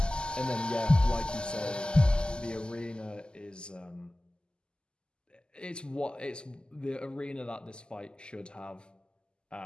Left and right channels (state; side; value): late; right; 0.048 ms